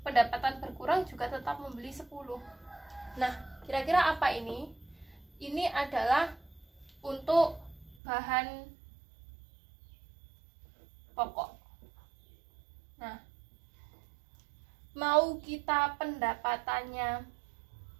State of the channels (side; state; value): left; drops out; at 8.0 s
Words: pendapatan berkurang juga tetap membeli 10. Nah, kira-kira apa ini? Ini adalah untuk bahan pokok. Nah, mau kita pendapatannya